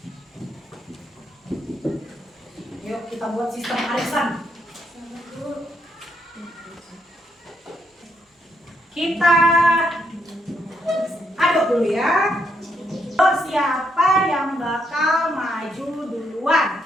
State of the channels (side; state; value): both; normal; correlation 0.77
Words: Yuk kita buat sistem arisan. Kita aduk dulu ya. Siapa yang bakal maju duluan?